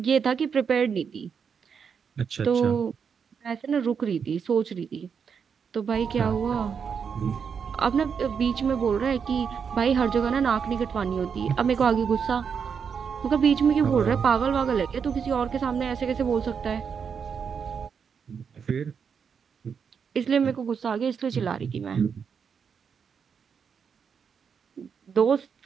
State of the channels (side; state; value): left; quieter; 6.6 dB